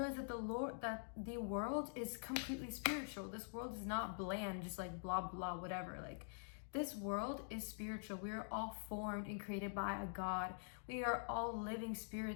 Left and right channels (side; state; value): right; silent; digital silence